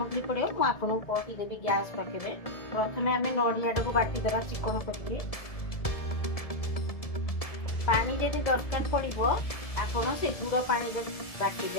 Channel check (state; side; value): late; right; 1.7 ms